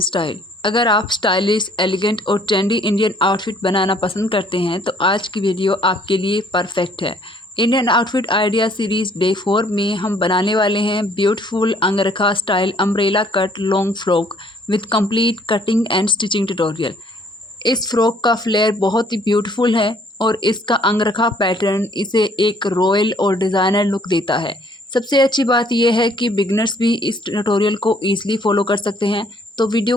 Style. अगर आप stylish, elegant और trendy Indian outfit बनाना पसंद करते हैं तो आज की वीडियो आपके लिए परफेक्ट है। Indian outfit idea series day 4 में हम बनाने वाले हैं beautiful angrakha style umbrella cut long frock with complete cutting and stitching tutorial. इस फ्रॉक का फ्लेयर बहुत ही ब्यूटीफुल है और इसका अंगरखा पैटर्न इसे एक रॉयल और डिज़ाइनर लुक देता है। सबसे अच्छी बात यह है कि बिगनर्स भी इस ट्यूटोरियल को ईजिली फॉलो कर सकते हैं, तो वीडियो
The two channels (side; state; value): both; normal; correlation 0.62